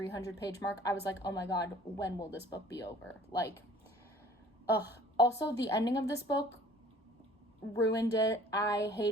page mark, I was like, oh my god, when will this book be over? Also, the ending of this book ruined it. I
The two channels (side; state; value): both; normal; correlation 0.52